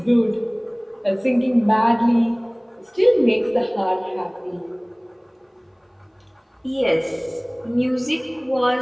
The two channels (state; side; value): identical; both; correlation 1.00